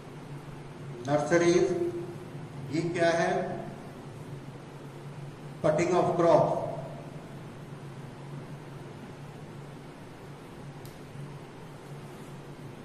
नर्सरीज। ये क्या है, कटिंग ऑफ क्रॉप।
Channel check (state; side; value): identical; both; correlation 1.00